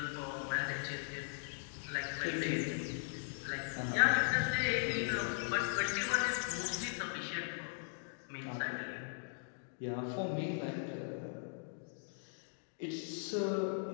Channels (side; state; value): right; silent; digital silence